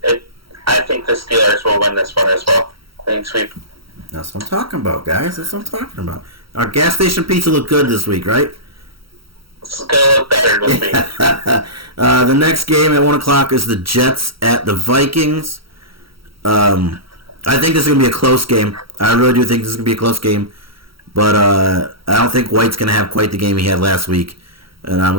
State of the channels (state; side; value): late; left; 0.75 ms